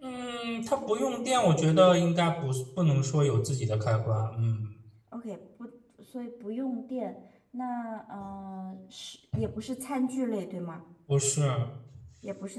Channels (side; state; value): both; identical; correlation 1.00